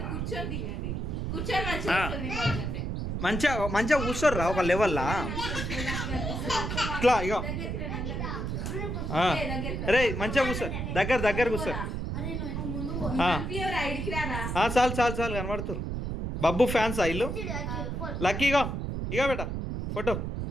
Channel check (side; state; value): right; noise; rumble, 3 dB below the sound